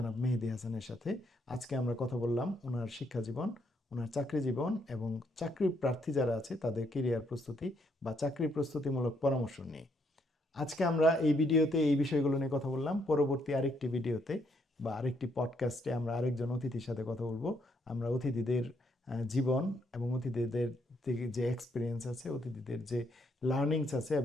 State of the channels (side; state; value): both; normal; correlation 0.73